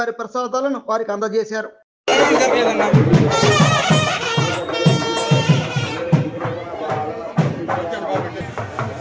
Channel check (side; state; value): both; identical; correlation 1.00